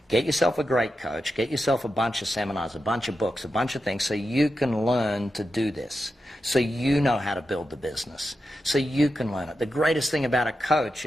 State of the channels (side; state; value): both; normal; correlation 0.89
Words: Get yourself a great coach. Get yourself a bunch of seminars, a bunch of books, a bunch of things so you can learn to do this, so you know how to build the business, so you can learn it. The greatest thing about a coach